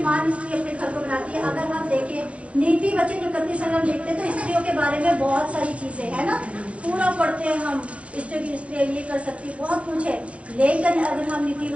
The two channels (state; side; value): late; left; 0.063 ms